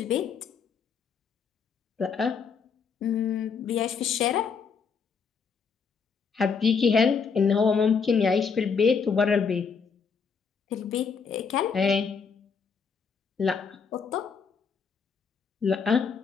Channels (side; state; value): right; quieter; 5.8 dB